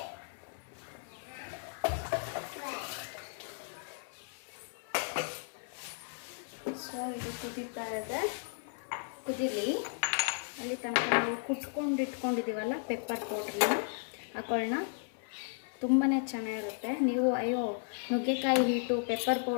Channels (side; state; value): right; silent; 55 dB below the other